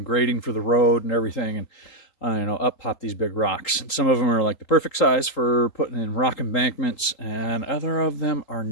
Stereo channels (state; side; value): late; right; 3.8 ms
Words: grading for the road and everything, and up pop these big rocks. And some of them are like the perfect size for putting in rock embankments, and other of them are